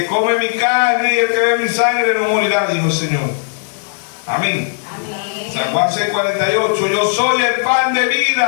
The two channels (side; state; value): right; silent; digital silence